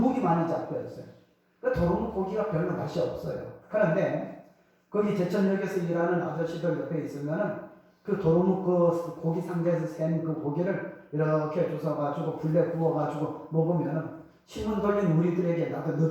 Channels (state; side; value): identical; both; correlation 1.00